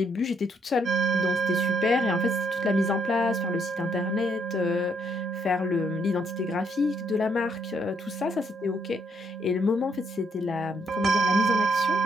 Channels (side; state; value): both; normal; correlation 0.72